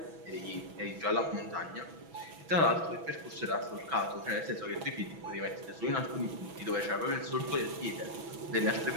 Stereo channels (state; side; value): late; left; 6.1 ms